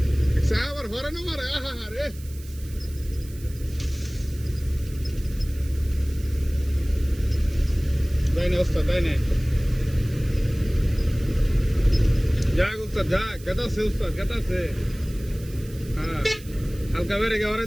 আবার হরে না মারে আহা রে তাই না ওস্তাদ তাই না যাক উস্তাদ যাক কেটাছে উস্তাদ কেটাছে হ্যাঁ হালকা বেড়ে গে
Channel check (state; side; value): noise; right; hiss, 20 dB below the sound